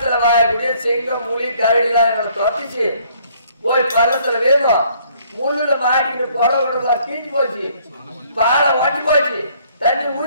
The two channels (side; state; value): both; inverted; correlation -0.63